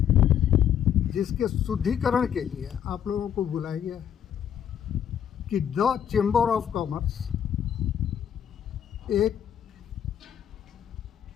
जिसके शुद्धिकरण के लिए आप लोगों को बुलाया गया कि द चैम्बर ऑफ कॉमर्स एक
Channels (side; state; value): right; quieter; 9.2 dB